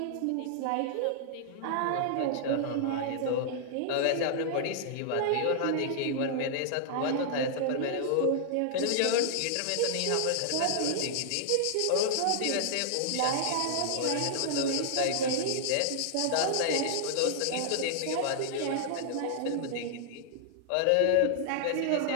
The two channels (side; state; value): both; different; correlation -0.01